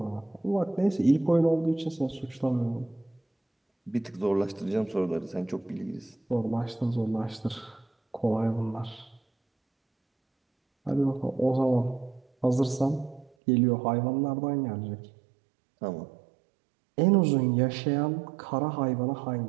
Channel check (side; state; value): left; drops out; at 13.3 s